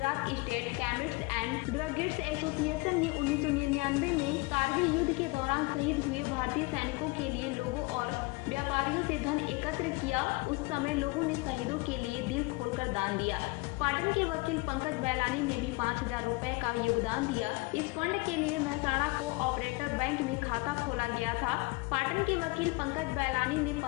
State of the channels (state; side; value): quieter; right; 25.1 dB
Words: state chemist and druggist association ने 1999 में कारगिल युद्ध के दौरान शहीद हुए भारतीय सैनिकों के लिए लोगों और व्यापारियों से धन एकत्र किया। उस समय लोगों ने शहीदों के लिए दिल खोलकर दान दिया। पाटन के वकील पंकज बैलानी ने भी 5,000 रुपए का योगदान दिया। इस फंड के लिए मेहसाणा को ऑपरेटर बैंक में खाता खोला गया था। पाटन के वकील पंकज बैलानी ने